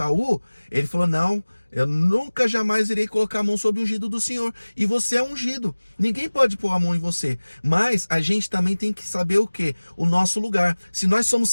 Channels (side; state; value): both; inverted; correlation -1.00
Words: ele falou: não, eu nunca jamais irei colocar a mão sobre o ungido do Senhor. E você é ungido. Ninguém pode pôr a mão em você. Mas a gente também tem que saber o quê? O nosso lugar. Se nós somos